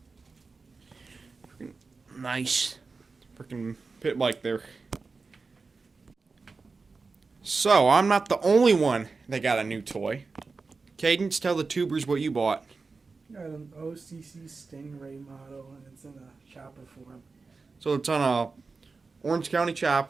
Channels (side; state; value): left; quieter; 4.2 dB